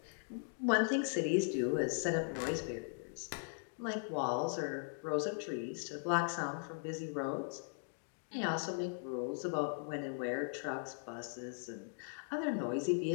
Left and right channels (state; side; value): silent; right; digital silence